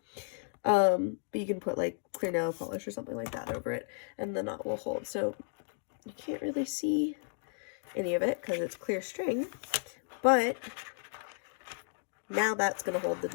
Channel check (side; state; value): right; silent; 55 dB below the other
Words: But you can put like clear nail polish or something like that over it, and the knot will hold. So you can't really see any of it because it's clear string, but now that's going to hold the